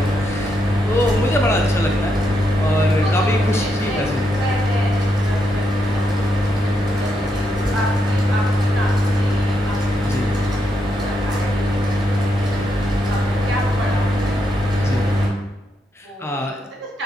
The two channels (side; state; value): both; normal; correlation 0.81